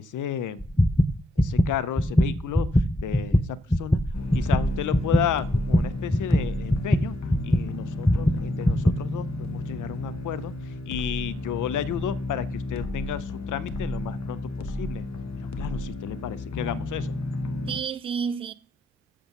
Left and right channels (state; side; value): normal; both; correlation 0.76